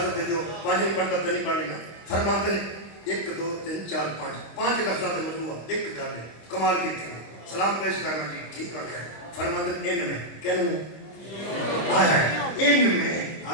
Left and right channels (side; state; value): right; late; 25 ms